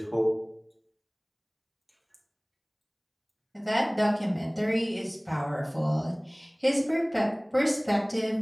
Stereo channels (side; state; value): both; identical; correlation 1.00